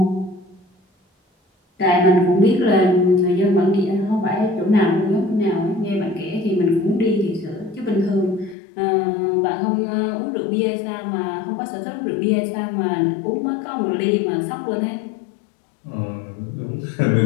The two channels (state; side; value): drops out; right; at 8.6 s